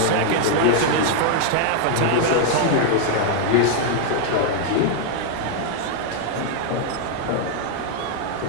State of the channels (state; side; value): different; both; correlation 0.00